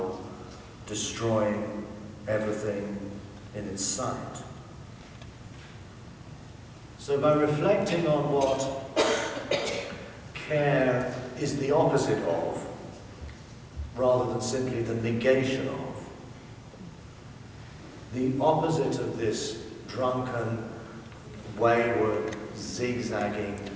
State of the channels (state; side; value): identical; both; correlation 1.00